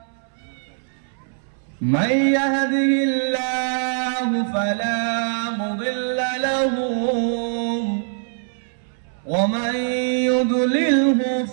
من يهده الله فلا مضل له ومن يضلله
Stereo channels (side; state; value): left; silent; 64 dB below the other